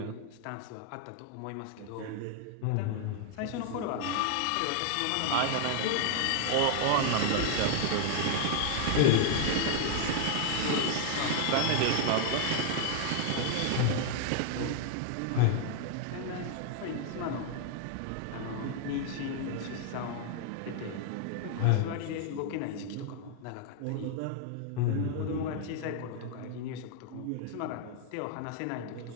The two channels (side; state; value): both; different; correlation 0.00